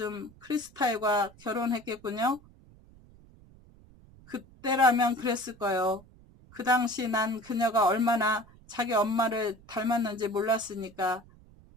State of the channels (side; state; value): right; noise; rumble, 25 dB below the sound